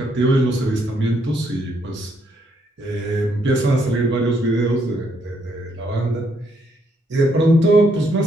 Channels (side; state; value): both; normal; correlation 0.73